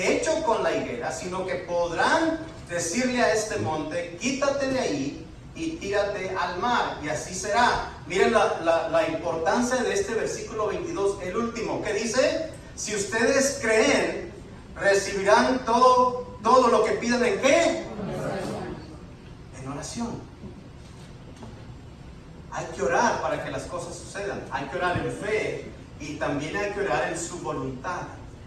hecho con la higuera, sino que podrán decirle a este monte, quítate de ahí y tírate al mar, y así será. Miren la importancia de este versículo 22, el último, que dice, si ustedes creen, recibirán todo lo que pidan. ¿En qué? En oración. Hay que orar para que las cosas sucedan. Hay que orar en fe y también hay que orar en su voluntad.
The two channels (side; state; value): both; identical; correlation 1.00